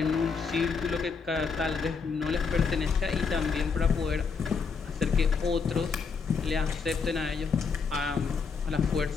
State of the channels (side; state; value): right; quieter; 5.3 dB